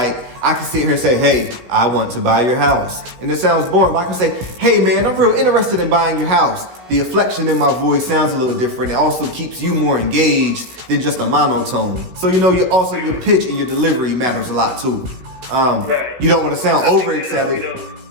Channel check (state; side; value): late; left; 16 ms